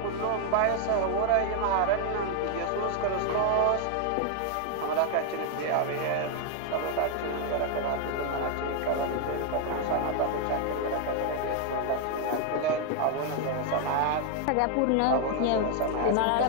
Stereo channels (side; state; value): both; different; correlation 0.00